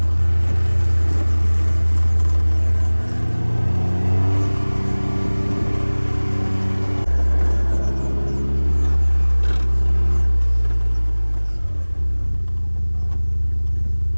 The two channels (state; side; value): inverted; both; correlation -1.00